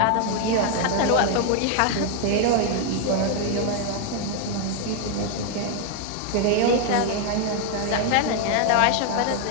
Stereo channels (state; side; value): different; both; correlation 0.01